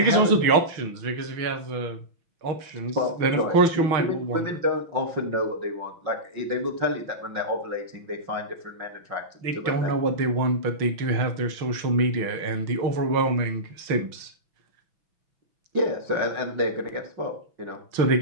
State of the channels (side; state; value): left; late; 6.1 ms